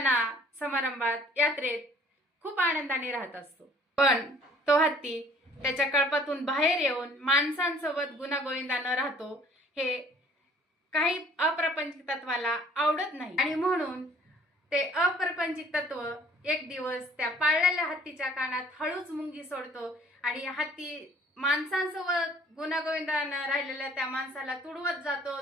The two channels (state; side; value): normal; both; correlation 0.55